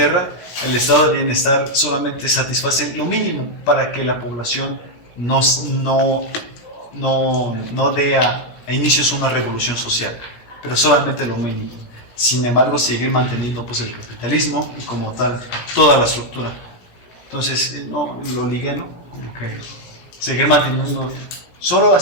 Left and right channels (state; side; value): late; right; 17 ms